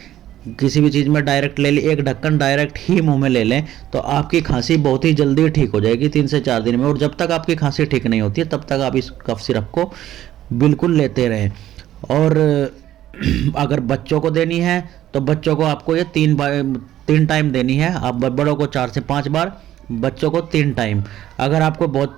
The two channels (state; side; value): quieter; left; 12.8 dB